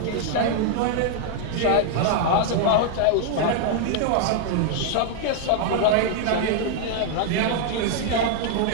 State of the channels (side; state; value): both; different; correlation 0.00